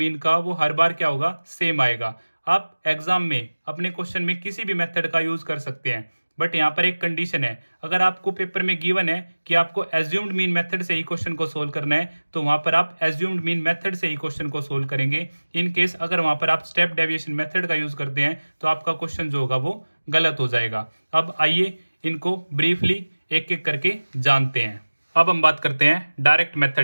का वो हर बार क्या होगा, सेम आएगा। आप एग्जाम में अपने क्वेश्चन में किसी भी मेथड का यूज़ कर सकते हैं, बट यहाँ पर एक कंडीशन है। अगर आपको पेपर में गिवन है कि आपको एज्यूम्ड मीन मेथड से ही क्वेश्चन को सोल्व करना है, तो वहाँ पर आप एज्यूम्ड मीन मेथड से ही क्वेश्चन को सोल्व करेंगे। इन केस अगर वहाँ पर आप स्टेप डेविएशन मेथड का यूज़ करते हैं तो आपका क्वेश्चन जो होगा वो गलत हो जाएगा। अब आइए इनको ब्रीफली एक एक करके जानते हैं। अब हम बात करते हैं डायरेक्ट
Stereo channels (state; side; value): inverted; both; correlation -1.00